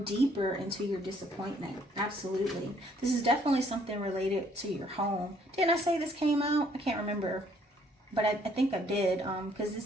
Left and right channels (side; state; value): both; normal; correlation 0.64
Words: into your disappointment. Absolutely. This is definitely something related to your home. Didn't I say this came out? I can't remember, but I think I did, because this